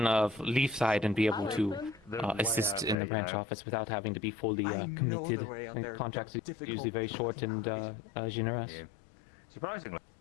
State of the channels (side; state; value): right; drops out; at 3.0 s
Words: of Leafside and be able to assist in the branch office without having to be fully committed. And contracts are usually very short and generous. surprisingly,